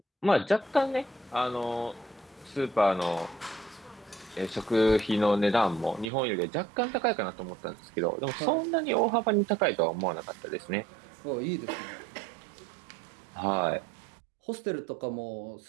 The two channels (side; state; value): left; drops out; at 6.1 s